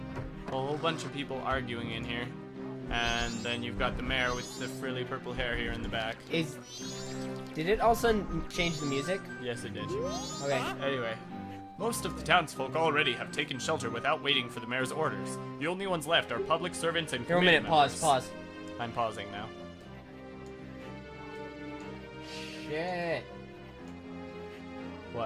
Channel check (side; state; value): both; identical; correlation 1.00